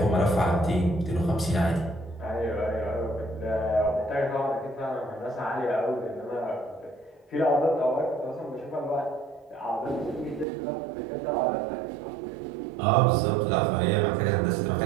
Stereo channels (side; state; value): left; drops out; at 10.5 s